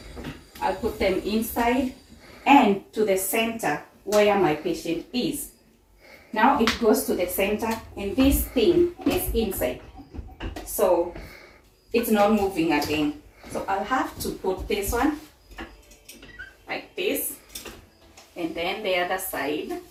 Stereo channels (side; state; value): both; identical; correlation 1.00